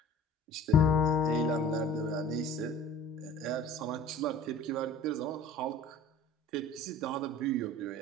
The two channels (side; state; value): both; normal; correlation 0.44